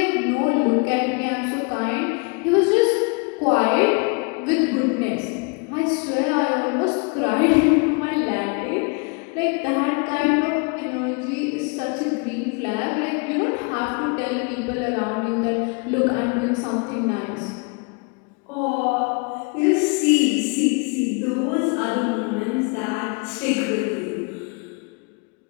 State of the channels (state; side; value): quieter; right; 32.7 dB